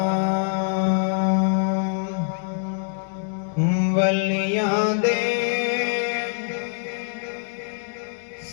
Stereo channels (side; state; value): right; silent; digital silence